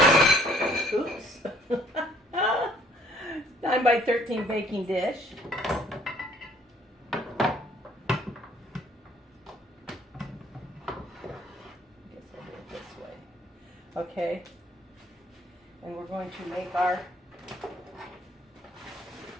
oops, 9 by 13 baking dish. I guess I'll do it this way. Okay. And we're going to make our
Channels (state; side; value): normal; both; correlation 0.60